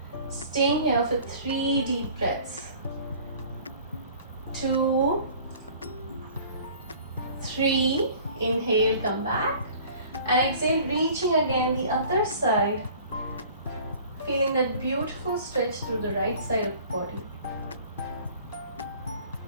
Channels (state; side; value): inverted; both; correlation -0.49